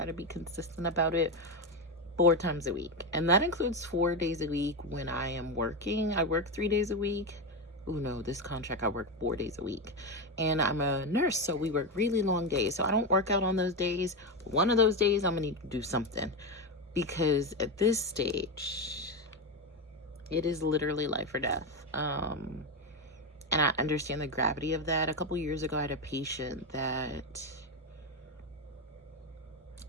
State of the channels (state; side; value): normal; both; correlation 0.12